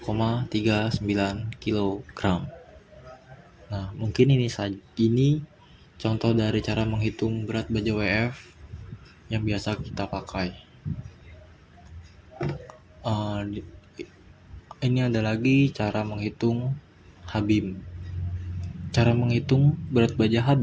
kg. Nah, mungkin ini contoh dari cara menghitung berat baja WF yang biasa kita pakai. Ini ada lagi cara menghitung Habim. Cara menghitung berat baja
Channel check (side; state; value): both; identical; correlation 1.00